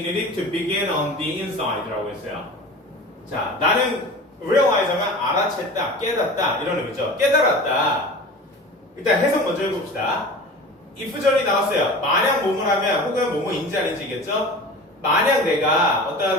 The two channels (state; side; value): normal; both; correlation 0.36